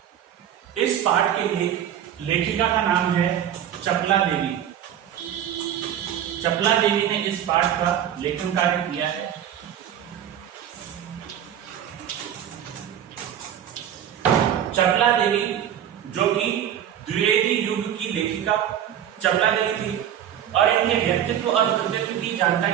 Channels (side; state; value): left; quieter; 10.1 dB